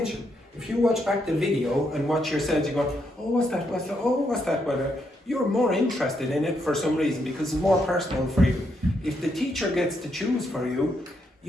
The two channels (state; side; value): normal; both; correlation 0.78